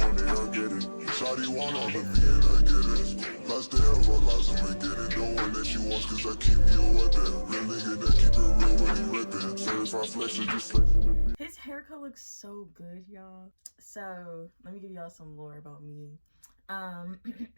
it, I get it. Shawty want all of me and I get it. Lots to hell, but lots of me get it. The one that she wants cause I keep me a weapon. Real nigga that keep it real when he reppin'. Certified flex is just flexing. His haircut looks so good, y'all. So let me give y'all some lore about me.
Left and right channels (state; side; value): inverted; both; correlation -1.00